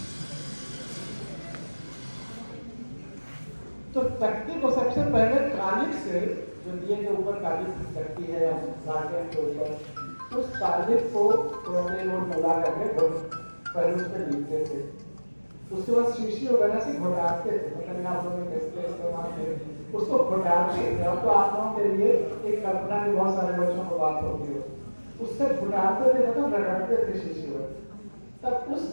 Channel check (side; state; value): both; inverted; correlation -1.00